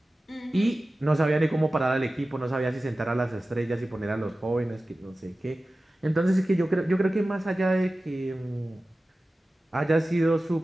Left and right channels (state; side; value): normal; both; correlation 0.96